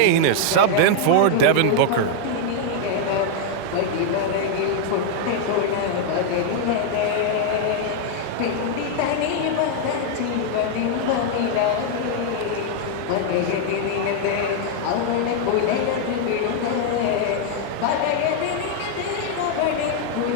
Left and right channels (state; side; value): different; both; correlation 0.00